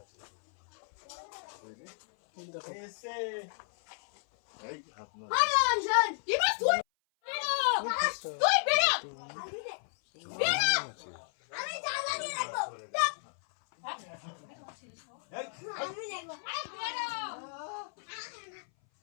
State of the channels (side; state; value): right; silent; 56 dB below the other